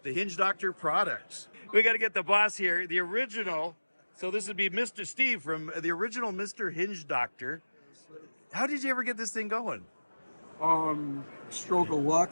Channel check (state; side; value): inverted; both; correlation -1.00